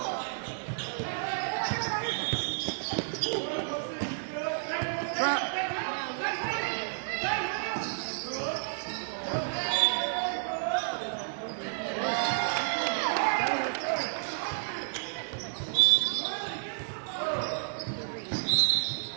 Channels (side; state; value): left; silent; digital silence